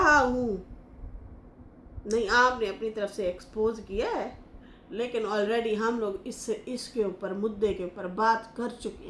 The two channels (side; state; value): both; identical; correlation 1.00